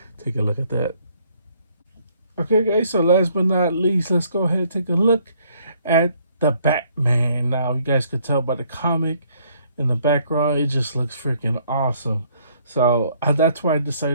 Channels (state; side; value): inverted; both; correlation -0.65